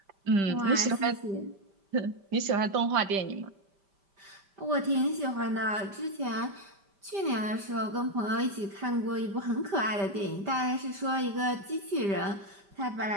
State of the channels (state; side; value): late; left; 5.1 ms